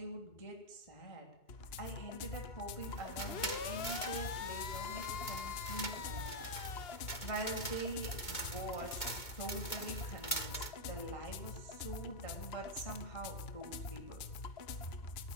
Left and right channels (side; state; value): right; late; 2.2 ms